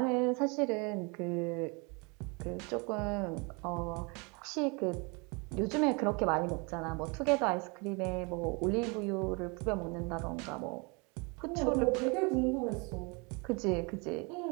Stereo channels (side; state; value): left; quieter; 30.5 dB